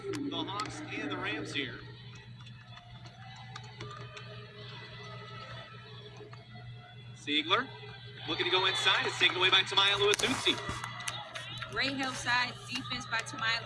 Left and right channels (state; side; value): identical; both; correlation 1.00